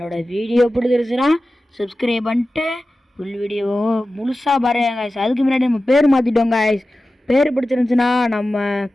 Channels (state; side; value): normal; both; correlation 0.95